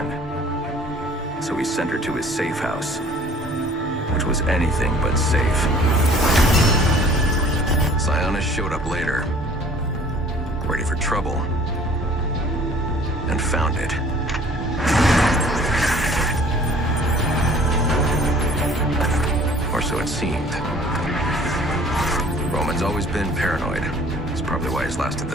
So he sent her to his safe house. Which was anything but safe. Sionis showed up later. Ready for trouble. and found it. Or so it seemed. Roman's always been paranoid. That's probably why he's lasted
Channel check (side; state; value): both; normal; correlation 0.52